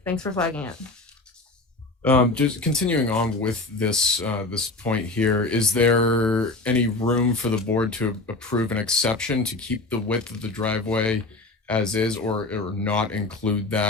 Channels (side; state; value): right; quieter; 3.1 dB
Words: Thanks for flagging it. Just continuing on with this this point here, is there any room for the board to approve an exception to keep the width of the driveway as is, or not include